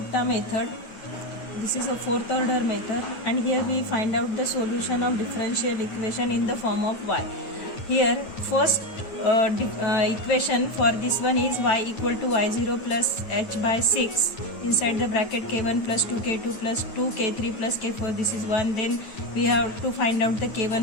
method. This is a fourth order method, and here we find out the solution of differential equation in the form of y. Here first equation for this one is y equal to y0 plus h by 6 inside the bracket k1 plus 2k2 plus 2k3 plus k4. This is 1. Then we have to find out the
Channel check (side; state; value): right; late; 9.4 ms